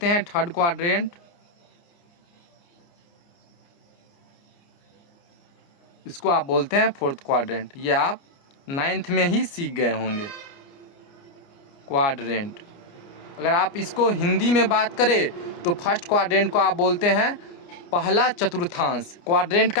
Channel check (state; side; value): late; right; 29 ms